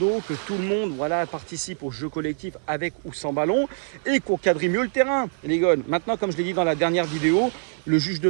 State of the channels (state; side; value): silent; left; digital silence